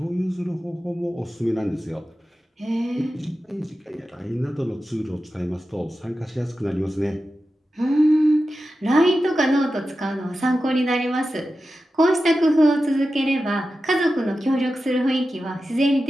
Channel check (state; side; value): normal; both; correlation 0.92